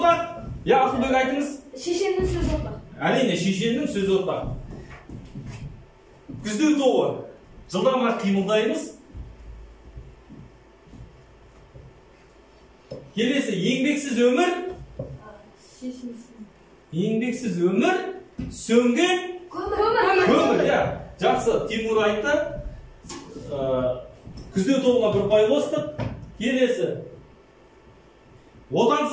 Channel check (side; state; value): both; identical; correlation 1.00